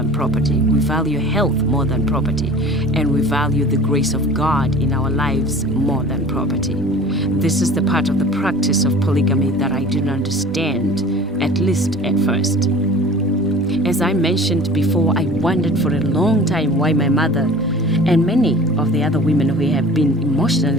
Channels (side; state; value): both; normal; correlation 0.43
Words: property, we value health more than property, and we value the grace of God in our lives more than property. This is the part of the practice of polygamy that I didn't understand, at least at first. As I mentioned before, I wondered for a long time why my mother and many of the other women who have been